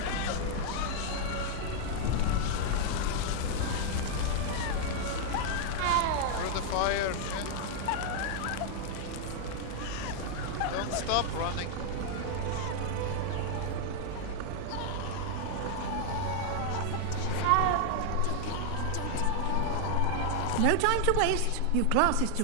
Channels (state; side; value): different; both; correlation 0.00